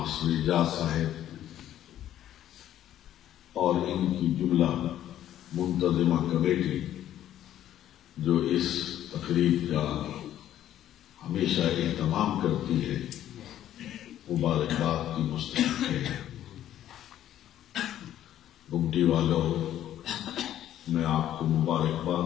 اعجاز صاحب اور ان کی جملہ منتظمہ کمیٹی جو اس تقریب کا ہمیشہ اہتمام کرتی ہے، مبارکباد کی مستحق ہے۔ گمٹی والوں، میں آپ کو مبارکباد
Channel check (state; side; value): quieter; right; 11.8 dB